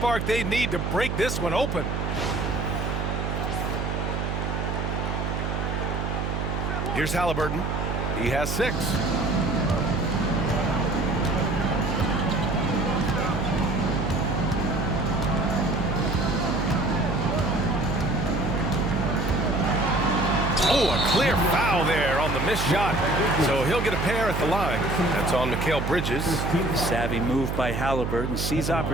they need to break this one open. Here's Haliburton. He has 6. Oh, a clear foul there on the missed shot. So he'll get a pair at the line. That's on Mikal Bridges. Savvy move by Haliburton. Sees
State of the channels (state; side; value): noise; right; hum, 2 dB below the sound